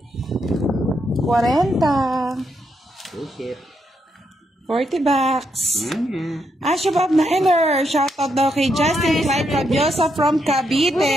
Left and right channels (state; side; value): normal; both; correlation 0.79